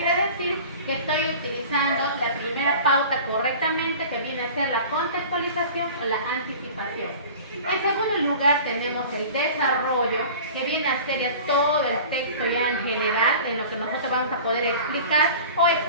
decir? Que estoy utilizando la primera pauta correctamente, que viene a ser la contextualización o la anticipación. En segundo lugar tenemos el desarrollo, que viene a ser ya todo el texto ya en general, en lo que nosotros vamos a poder explicar o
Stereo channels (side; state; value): both; inverted; correlation -0.40